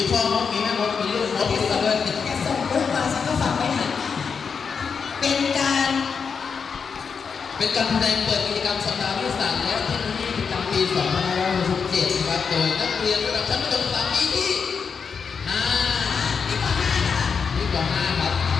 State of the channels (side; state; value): right; quieter; 5.9 dB